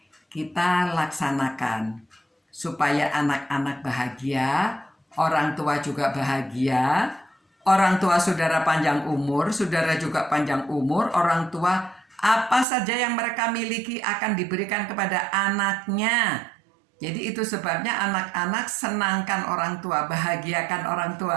kita laksanakan supaya anak-anak bahagia, orang tua juga bahagia, orang tua saudara panjang umur, saudara juga panjang umur, orang tua apa saja yang mereka miliki akan diberikan kepada anaknya. Jadi itu sebabnya anak-anak senangkan orang tua, bahagiakan orang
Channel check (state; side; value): drops out; left; at 12.7 s